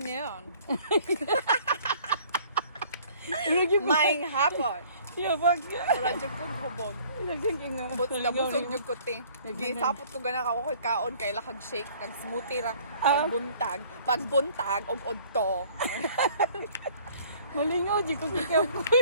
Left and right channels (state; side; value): inverted; both; correlation -0.54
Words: Lagi mo. Maing hapon. Yabag. Wala dyan kong hubog. Naging nga. Busog yung kuti. Gisapot ko gana ka ko'y kaon kay lakag shake. Nag-smoothie ra. Pagbuntag. Pagbuntag og odto. Malingaw di ko kikaw ko.